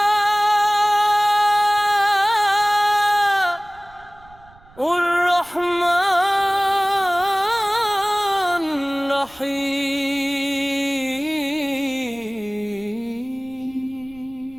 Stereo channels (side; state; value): right; noise; rumble, 25 dB below the sound